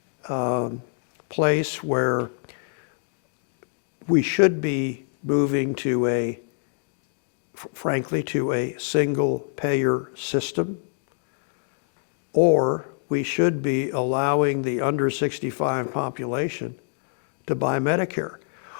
place where we should be moving to frankly, to a single payer system, or we should be allowing the under 65 population to buy Medicare.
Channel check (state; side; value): silent; right; digital silence